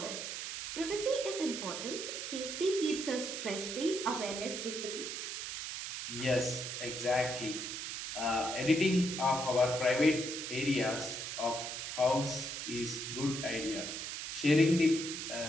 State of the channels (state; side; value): noise; right; hiss, 5 dB below the sound